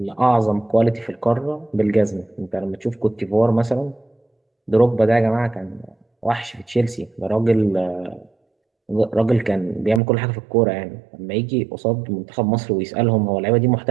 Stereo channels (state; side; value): drops out; left; at 10.0 s